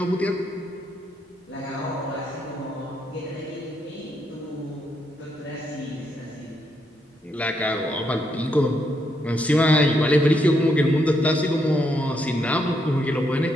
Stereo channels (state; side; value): normal; both; correlation 0.77